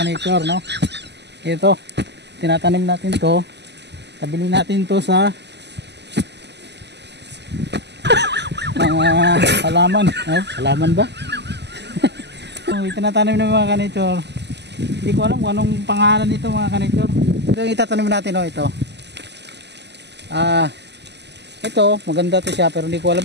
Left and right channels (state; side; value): late; left; 0.50 ms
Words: no? Ito, tinatanim natin to, tabili natin to sa mga halaman. Halaman ba? Itinatanim ng mga ka-nature. Hindi ko alam kung anong pangalan nito mga ka-nature. Ito yung itatanim natin, ito. Ito, maganda to siya pero hindi ko alam